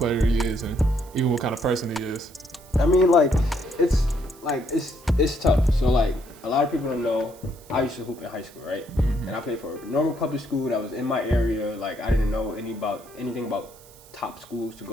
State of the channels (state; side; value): noise; right; hiss, 24 dB below the sound